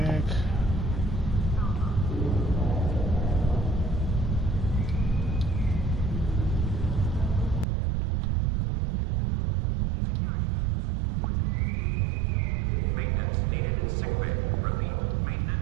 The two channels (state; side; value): drops out; left; at 7.7 s